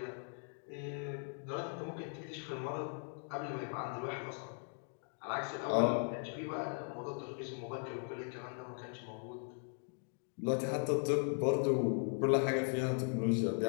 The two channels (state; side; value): silent; right; 52 dB below the other